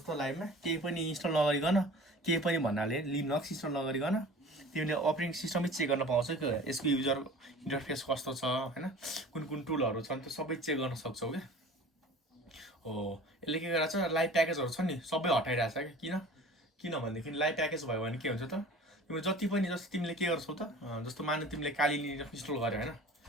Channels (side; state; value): both; normal; correlation 0.43